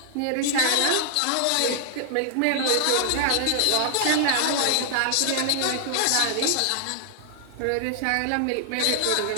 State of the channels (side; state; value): both; different; correlation 0.00